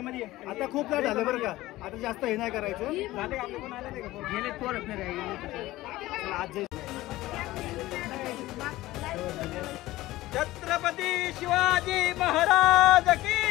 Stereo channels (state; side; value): quieter; right; 17.2 dB